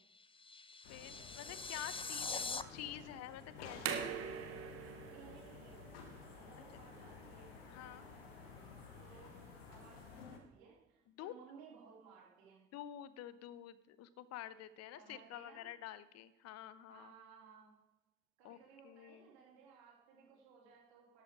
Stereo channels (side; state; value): both; normal; correlation 0.06